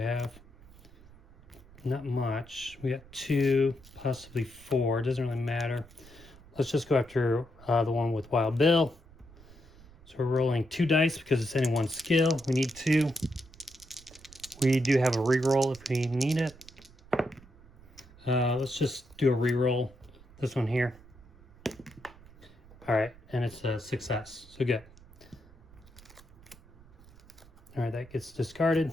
Not much. We got 2, possibly 4. It doesn't really matter. Let's just go after the one with Wild Bill. So we're rolling 2 dice because it's any 1 skill. We need 2. We do have a reroll if we need it. Let's just do a reroll. This one here. All right, and it's a success. So good. All right, that gets discarded.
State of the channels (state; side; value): noise; right; rumble, 23 dB below the sound